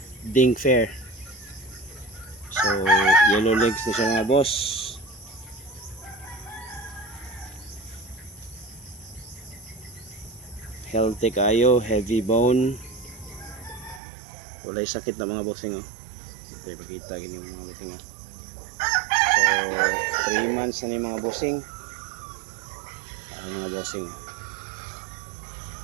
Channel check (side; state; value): left; drops out; at 14.0 s